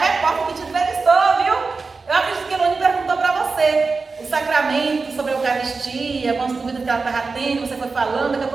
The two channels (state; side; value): quieter; left; 4.3 dB